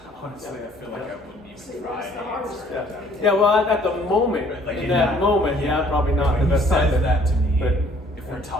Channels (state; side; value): normal; both; correlation 0.59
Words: Honestly, I feel like I wouldn't even try that's to the hardest answer thing. that. Yeah. Well, at the moment, Like in that moment, probably not when the he best says time. that to me, But if if we're